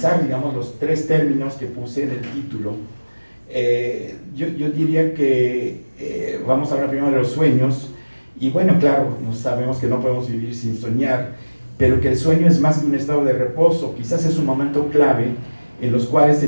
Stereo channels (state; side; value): inverted; both; correlation -1.00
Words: digamos, los tres términos que puse en el título, yo diría que vamos a hablar primero de los sueños, y bueno, claro, sabemos que no podemos vivir sin soñar, pero que el sueño es más que un estado de reposo, quizás es un momento clave en los cuales